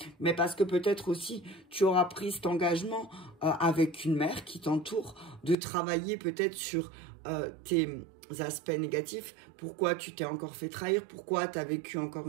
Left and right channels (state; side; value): drops out; left; at 5.6 s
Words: mais parce que peut-être aussi, tu auras pris cet engagement avec une mère qui t'entoure, de travailler peut-être sur tes aspects négatifs. Pourquoi tu t'es encore fait trahir? Pourquoi tu as vécu